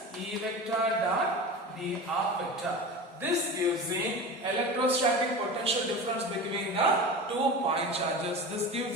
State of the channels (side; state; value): both; normal; correlation 0.30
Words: E vector dot dr vector. This gives the electrostatic potential difference between the 2 point charges. This